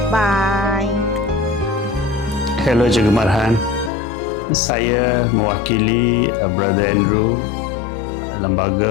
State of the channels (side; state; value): right; drops out; at 3.9 s